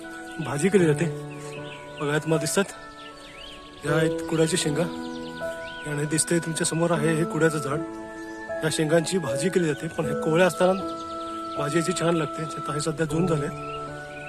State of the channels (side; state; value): both; identical; correlation 1.00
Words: भाजी केली जाते. बघा, तुम्हाला दिसतात या आहेत कुड्याची शेंगा आणि दिसतंय तुमच्या समोर आहे हे कुड्याचं झाड. या शेंगांची भाजी केली जाते, पण हे कोवळ्या असताना भाजी याची छान लागते. आता हे सध्या जून झाले,